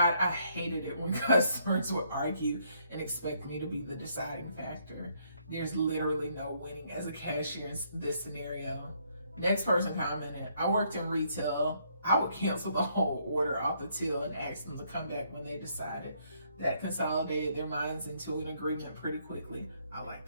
I hated it when customers would argue and expect me to be the deciding factor. There's literally no winning as a cashier in this scenario. Next person commented, I worked in retail. I would cancel the whole order off the till and ask them to come back when they decided. That consolidated their minds into an agreement pretty quickly. I like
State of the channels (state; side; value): inverted; both; correlation -0.71